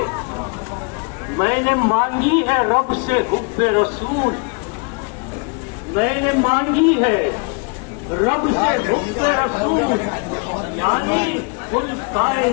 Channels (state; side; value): quieter; right; 35.7 dB